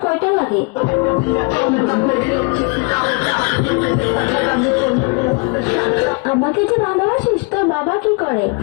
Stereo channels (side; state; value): right; quieter; 30.7 dB